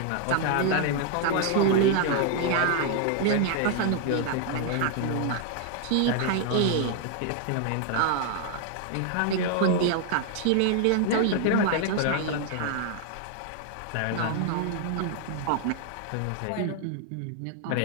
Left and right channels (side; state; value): both; different; correlation 0.00